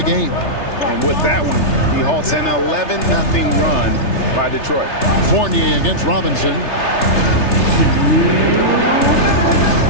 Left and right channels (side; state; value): right; late; 3.3 ms